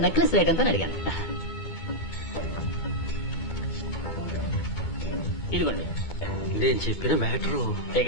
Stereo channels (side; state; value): right; late; 12 ms